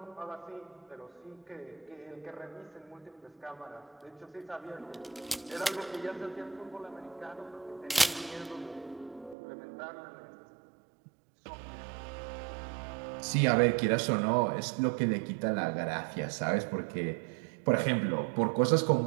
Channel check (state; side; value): drops out; left; at 9.3 s